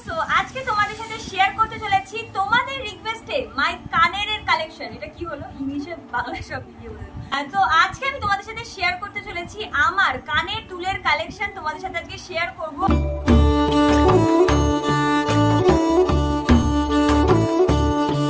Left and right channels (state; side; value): identical; both; correlation 1.00